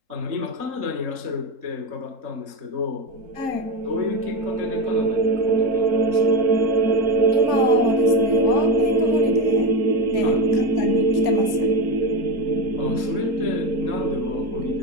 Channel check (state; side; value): late; left; 3.8 ms